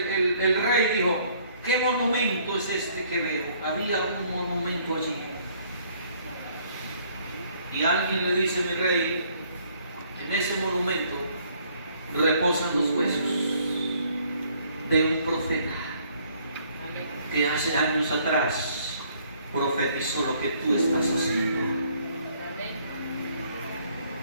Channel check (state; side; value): inverted; both; correlation -0.63